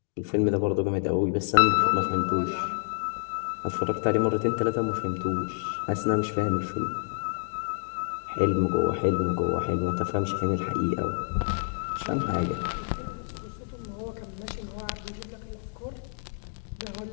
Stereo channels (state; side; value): silent; right; digital silence